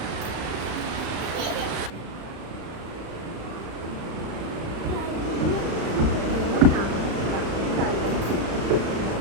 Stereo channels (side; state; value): left; late; 35 ms